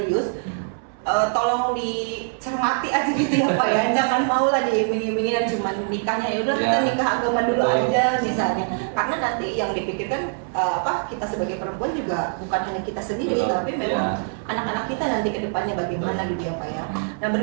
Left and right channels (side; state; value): left; silent; 63 dB below the other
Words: tolong dicermati aja gitu ya Pak ya, jangan mau lah diiming-imingin dan cuma nikahnya ya udah kita nikah agama dulu aja misalnya, karena nanti yang dipikirkan kita sebagai perempuan juga bukan hanya kita sendiri, tapi memang anak-anak kita nanti ke depannya bagaimana gitu ya Pak ya. Nah,